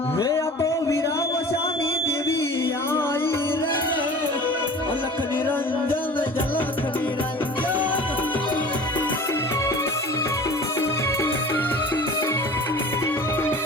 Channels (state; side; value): normal; both; correlation 0.41